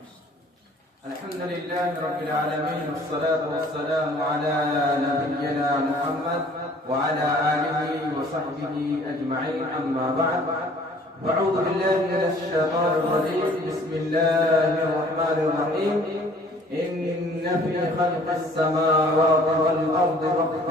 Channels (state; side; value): normal; both; correlation 0.54